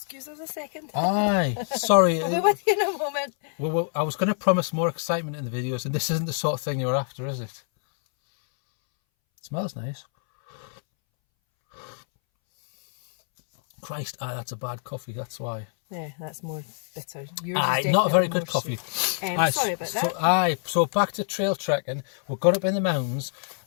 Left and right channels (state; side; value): silent; right; 61 dB below the other